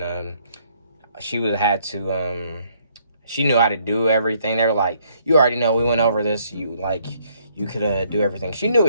she knew how to do everything. They were like, you already know, we went over this. You could do everything. She knew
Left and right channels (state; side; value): inverted; both; correlation -0.67